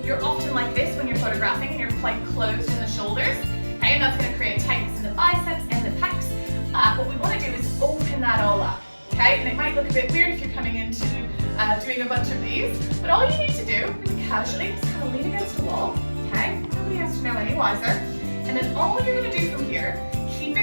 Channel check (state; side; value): inverted; both; correlation -1.00